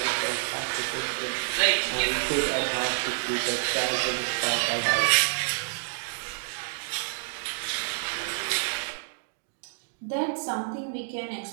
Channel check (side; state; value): left; silent; digital silence